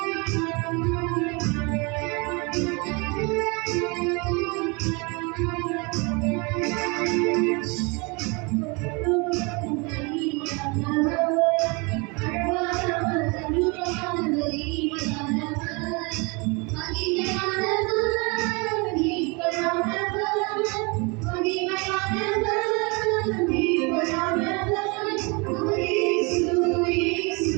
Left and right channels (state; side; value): quieter; left; 29.4 dB